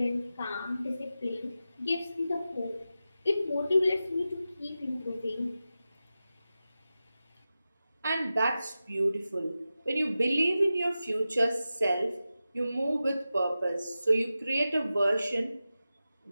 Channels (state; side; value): inverted; both; correlation -0.93